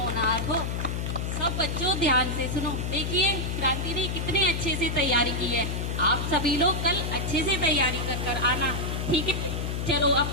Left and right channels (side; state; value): left; noise; hum, 2 dB below the sound